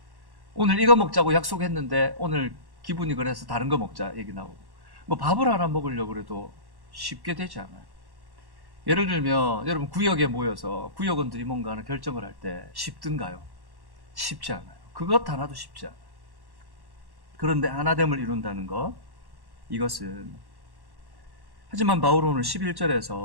오늘 이거 먹자고 약속했는데 오늘 기분이 그래서 다른 거 먹자 얘기 나오고, 뭐 밥을 하나 먹으려고 그래도 쉽게 되지 않아요. 예를 들면 여러분 구역에 모여서 구역원들이 뭔가 하는 결정을 할 때 쉽든가요? 쉽지 않아요. 그것 하나도 쉽지 않아요. 그런데 하나됨을 이룬다는 것, 이것은, 하지만 바울은 오늘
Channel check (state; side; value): late; left; 1.1 ms